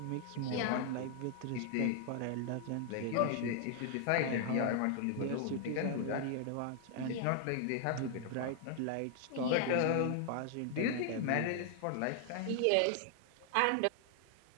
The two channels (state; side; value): different; both; correlation 0.00